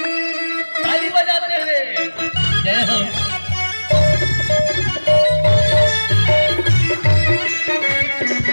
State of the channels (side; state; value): both; inverted; correlation -1.00